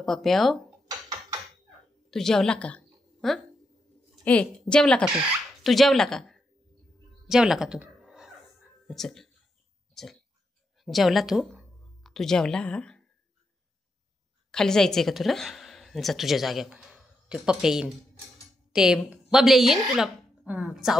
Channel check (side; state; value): both; normal; correlation 0.83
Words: पप्प्या तू जेवला का? ए जेवला का तू? तू जेवला का? जेवला का तू? चल चल जेवला तू? तू जेवला? खाली जायचंय का तुला? जा तुझ्या जाग्यावर. ते पप्प्या येईन, ते बबले येईन तुला